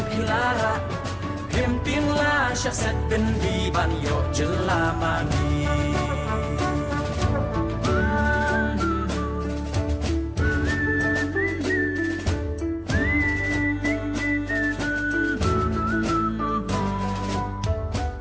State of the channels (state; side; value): identical; both; correlation 1.00